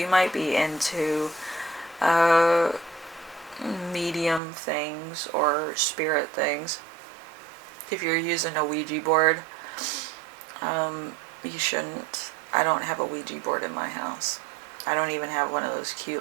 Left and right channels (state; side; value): drops out; left; at 4.4 s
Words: might be into medium things or spirit things. If you're using a Ouija board, you shouldn't. I don't have a Ouija board in my house. I don't even have one of those